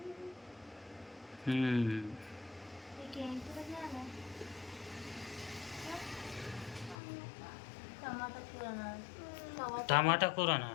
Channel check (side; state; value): right; drops out; at 7.0 s